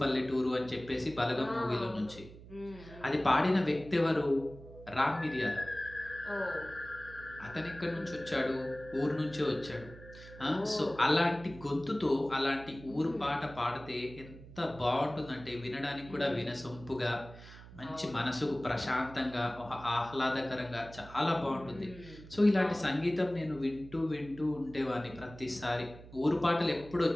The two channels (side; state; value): right; noise; hum, 17 dB below the sound